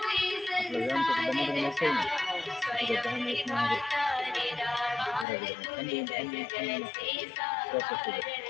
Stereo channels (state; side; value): drops out; right; at 5.2 s